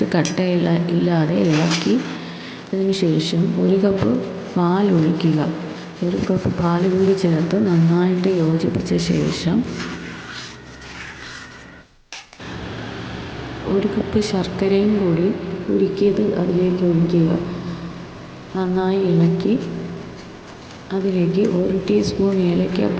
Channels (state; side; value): identical; both; correlation 1.00